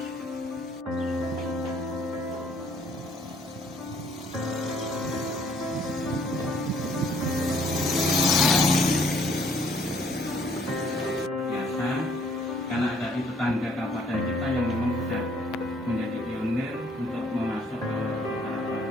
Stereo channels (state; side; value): normal; both; correlation 0.63